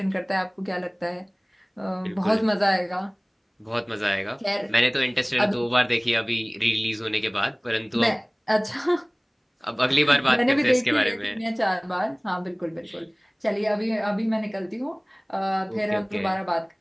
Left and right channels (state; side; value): identical; both; correlation 1.00